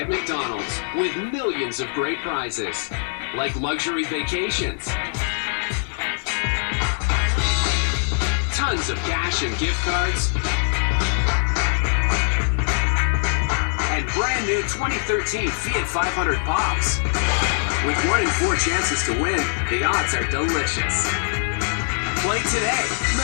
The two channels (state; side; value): silent; right; 56 dB below the other